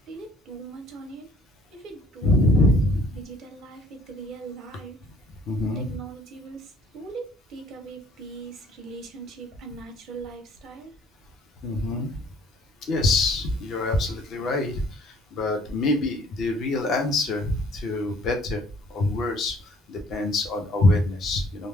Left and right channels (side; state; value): both; normal; correlation 0.60